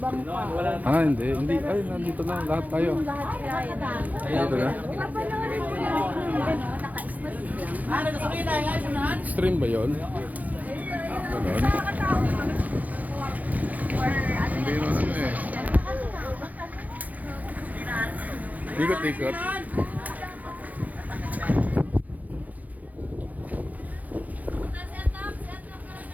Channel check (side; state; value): left; late; 0.078 ms